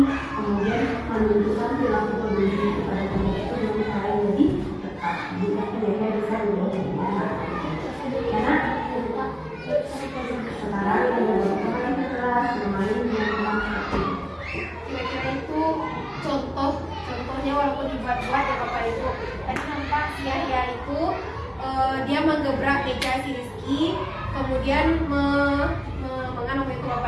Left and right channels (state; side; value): identical; both; correlation 1.00